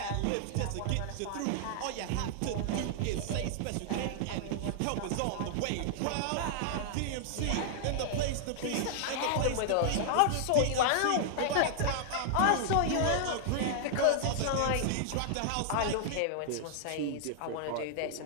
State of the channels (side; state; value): both; different; correlation -0.01